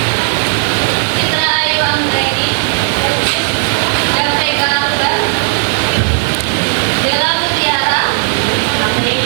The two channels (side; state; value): left; silent; 59 dB below the other